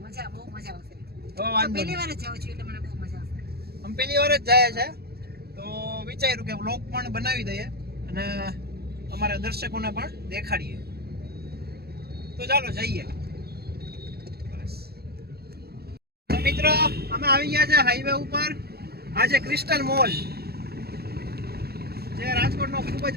મજા બહુ મજા આવશે. તો વાંધો પહેલી વાર જ જાઉં છું એટલે મને બહુ મજા આવશે. અમે પહેલી વાર જ જાય છે, તો વિચાર્યું કે વ્લોગ પણ બનાવી દઈએ અને અમારા દર્શકોને પણ દેખાડીએ. તો ચાલો જઈએ. બસ તો મિત્રો, અમે આવી ગયા છે હાઈવે ઉપર. આ છે ક્રિસ્ટલ મોલ, જે રાજકોટનો ખૂબ જ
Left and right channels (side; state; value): left; late; 0.46 ms